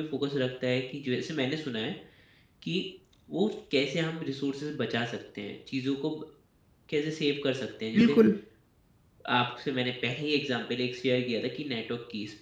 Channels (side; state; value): both; identical; correlation 1.00